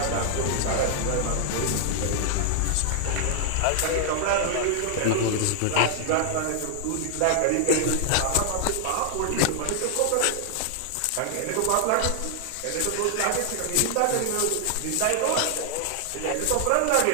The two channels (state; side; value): different; both; correlation 0.00